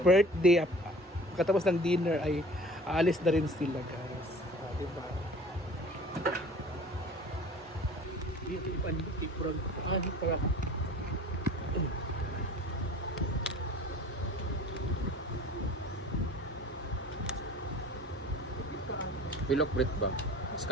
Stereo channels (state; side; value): normal; both; correlation 0.44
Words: birthday. Pagkatapos ng dinner ay aalis na rin sila, guys. Diba? Pilok Brit ba?